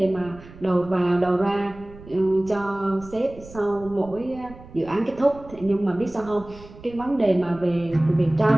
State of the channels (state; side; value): noise; right; rumble, 19 dB below the sound